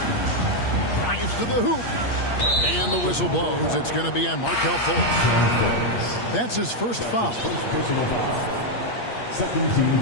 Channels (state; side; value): late; right; 8.5 ms